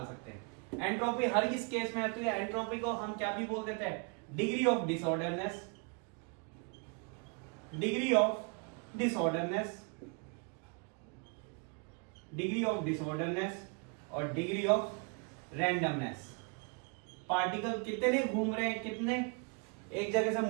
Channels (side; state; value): left; quieter; 35.6 dB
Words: सकते हैं। एंट्रोपी हर इस केस में आती है, एंट्रोपी को हम क्या भी बोल देते हैं, degree of disorderness, degree of disorderness, degree of disorderness और डिग्री ऑफ रैंडमनेस। पार्टिकल कितने घूम रहे हैं, कितने एक जगह से